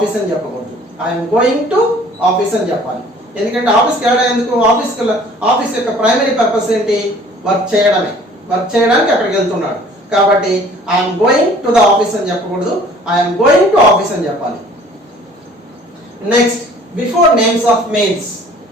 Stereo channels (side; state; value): both; normal; correlation 0.52